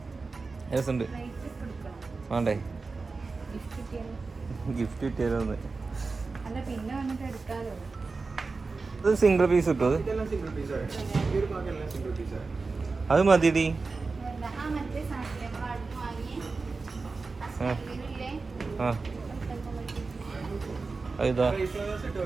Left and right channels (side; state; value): left; quieter; 4.1 dB